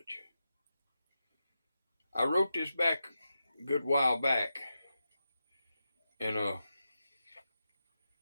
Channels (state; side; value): inverted; both; correlation -0.89